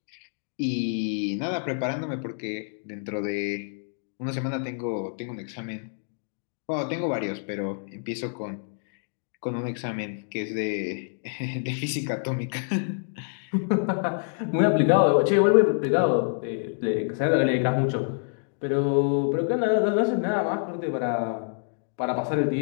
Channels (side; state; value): right; silent; digital silence